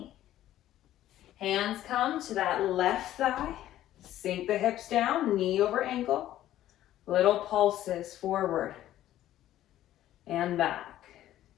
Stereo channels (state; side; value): quieter; right; 13.2 dB